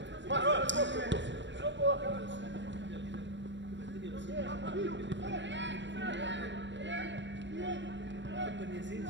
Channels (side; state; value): left; late; 0.53 ms